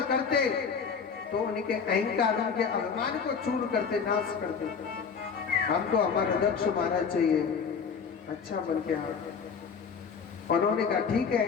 करते तो उनके अहंकार, उनके अभिमान को चूर करते, नाश करते। हमको हमारा दक्ष महाराज चाहिए, अच्छा बन के आए। उन्होंने कहा ठीक है,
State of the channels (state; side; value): quieter; right; 6.1 dB